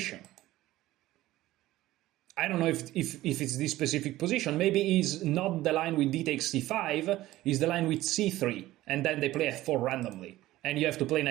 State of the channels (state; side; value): quieter; left; 16.2 dB